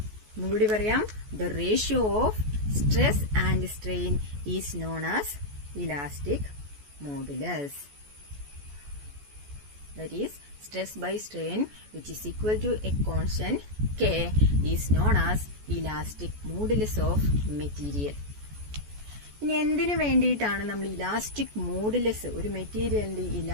ഒന്നുകൂടി പറയാം. The ratio of stress and strain is known as elastic modulus. That is, stress by strain which is equal to a constant K is known as elastic modulus of material. ഇനി എന്തിനു വേണ്ടിയിട്ടാണ് നമ്മൾ elastic modulus, ഒരു മെറ്റീരിയലിന്റെ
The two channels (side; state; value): left; late; 14 ms